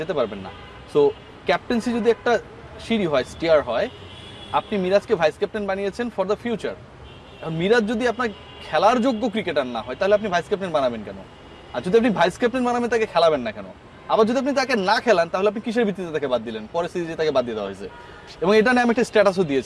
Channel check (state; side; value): identical; both; correlation 1.00